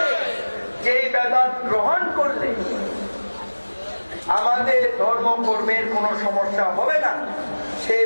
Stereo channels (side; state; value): both; inverted; correlation -1.00